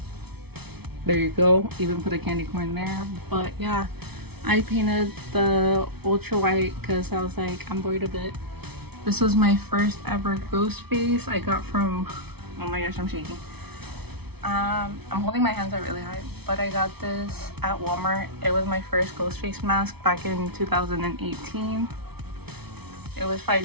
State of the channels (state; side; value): late; left; 0.98 ms